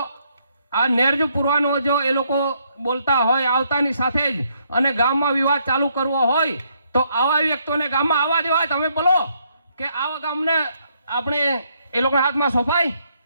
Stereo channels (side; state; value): both; inverted; correlation -0.72